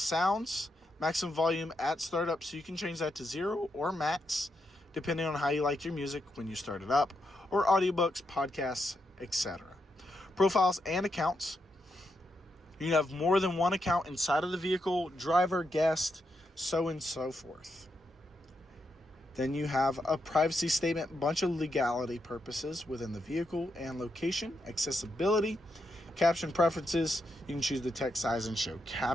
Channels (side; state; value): both; normal; correlation 0.83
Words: maximum volume at startup, so you can change that to 0 or max, depending on how you like your music when you start it up, or audiobooks, podcasts, etc. Profiles and accounts. You can have more than one account inside of the vehicle, driver, guest, so and so forth. Then you have a privacy statement, bunch of legality purposes within the vehicle and location, accessibility, caption preferences. You can choose the text size and show